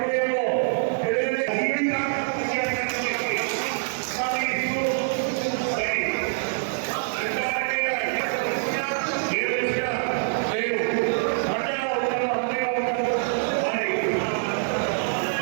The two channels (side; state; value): left; silent; digital silence